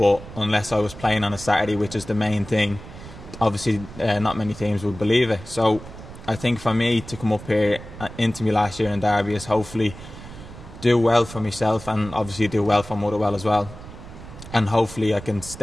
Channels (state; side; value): noise; right; rumble, 15 dB below the sound